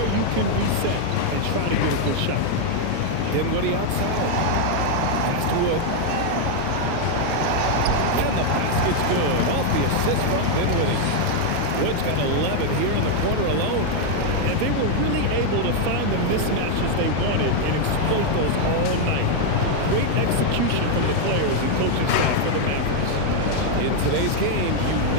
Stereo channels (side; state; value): both; different; correlation 0.00